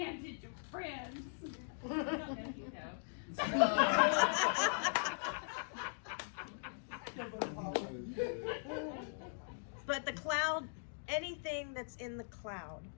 of friends. I don't know, you know. But the cloud, anything that's in the cloud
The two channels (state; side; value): silent; right; digital silence